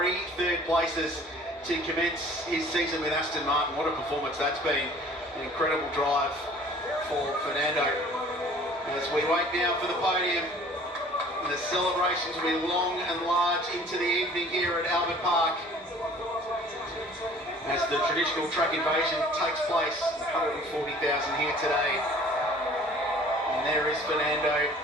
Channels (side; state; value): both; normal; correlation 0.50